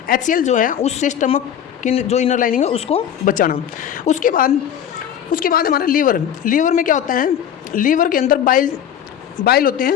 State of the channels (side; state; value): right; quieter; 9.5 dB